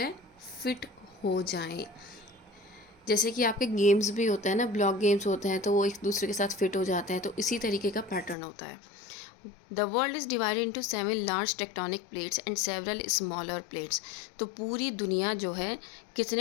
फिट हो जाएं। जैसे कि आपके गेम्स भी होते हैं ना, ब्लॉक गेम्स होते हैं, तो वो एक दूसरे के साथ फिट हो जाते हैं, तो इसी तरीके का पैटर्न होता है। The world is divided into 7 large tectonic plates and several smaller plates. तो पूरी दुनिया जो है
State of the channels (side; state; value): right; drops out; at 8.3 s